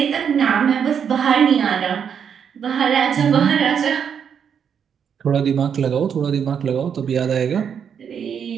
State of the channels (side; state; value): left; quieter; 7.6 dB